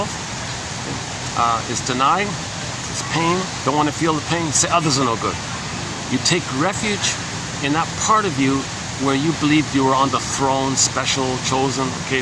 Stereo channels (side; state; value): both; identical; correlation 1.00